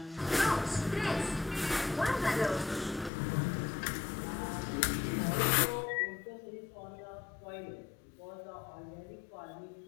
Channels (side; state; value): right; drops out; at 3.1 s